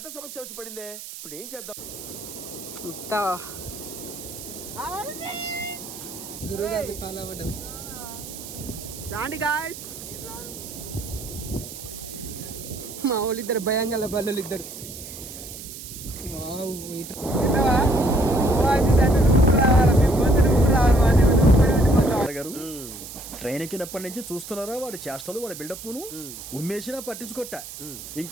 సమస్య వచ్చి పడిందే. ఇప్పుడు ఏం చేద్దాం? గురువు గారిని ఫాలో అవ్వడం. రాండి గాయస్. మా వాళ్ళు ఇద్దరు భయంగా బల్లలు ఇద్దరు. ట్రైన్ ఎక్కినప్పటి నుంచి చూస్తున్నారా వాడి చేష్టలు, వాడి బిల్డప్ ను. ఉమ్మేసినా పట్టించుకోట.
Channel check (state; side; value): noise; right; hiss, 12 dB below the sound